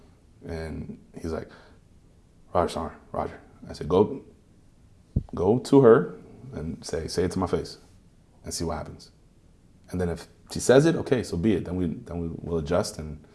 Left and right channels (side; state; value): both; identical; correlation 1.00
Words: And he's like, Roger. I said, go to her and say it to my face and see what happens. And then if she says it, okay, so be it. Then we will adjust and